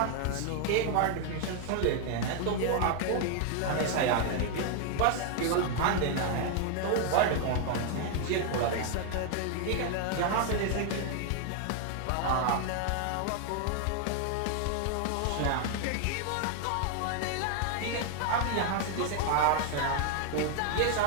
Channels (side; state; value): both; different; correlation 0.00